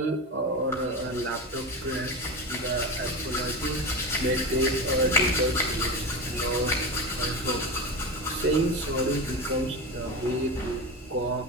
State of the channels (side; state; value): both; normal; correlation 0.23